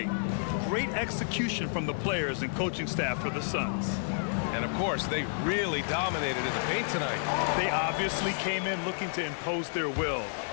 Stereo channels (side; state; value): right; silent; digital silence